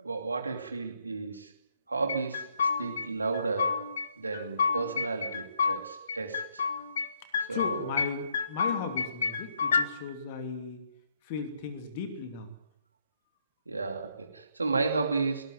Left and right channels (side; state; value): both; inverted; correlation -0.73